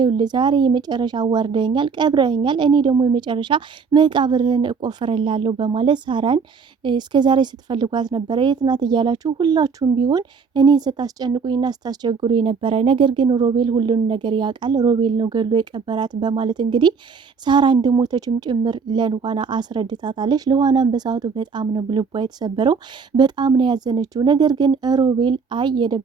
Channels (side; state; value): left; quieter; 5.4 dB